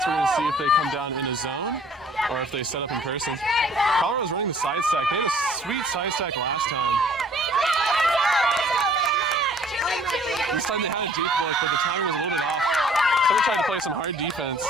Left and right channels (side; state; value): both; normal; correlation 0.55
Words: We're going to see if they come down in a zone or if they set up in person. Colorado's running the side stack. They had a sweet side stack last time. This time they had a deep look, but the timing was a little bit off. Someone tried to play some hard defense.